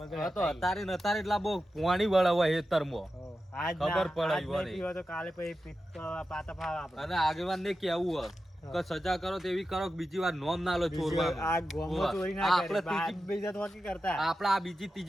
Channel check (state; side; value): normal; both; correlation 0.91